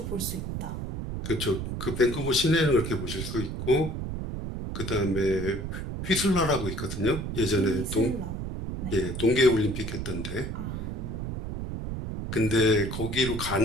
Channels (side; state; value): right; noise; rumble, 5 dB below the sound